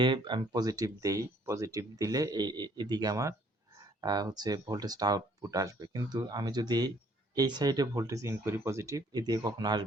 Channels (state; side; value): normal; both; correlation 0.62